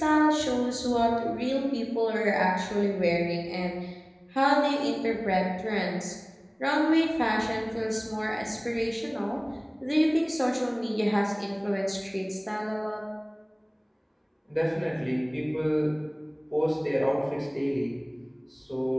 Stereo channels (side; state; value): both; identical; correlation 1.00